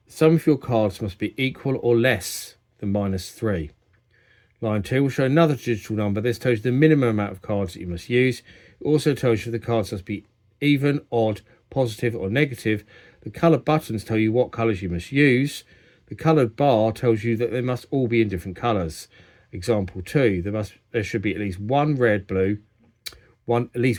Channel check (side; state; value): both; identical; correlation 1.00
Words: the sum of your cards must be equal or less than -3. Line 2 will show another digital number. This tells you the minimum amount of cards that you must use. It also tells you the cards must be even, odd, positive or negative. The coloured buttons tell you what colours you must use. The coloured bar tells you that they must all be in different colours. Example 2, there should be at least one red and